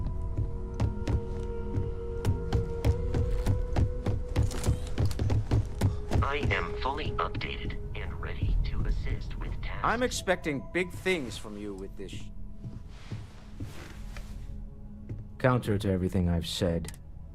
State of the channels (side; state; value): both; identical; correlation 1.00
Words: I am fully updated and ready to assist with tasks. I'm expecting big things from you with this. Counter to everything I've said,